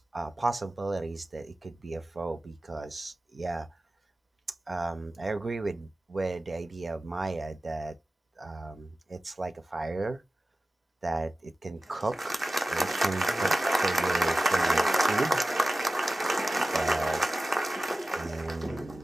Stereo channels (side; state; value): both; normal; correlation 0.95